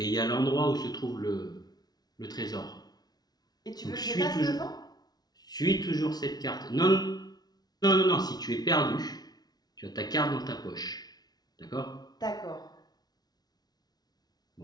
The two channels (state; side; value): late; right; 0.19 ms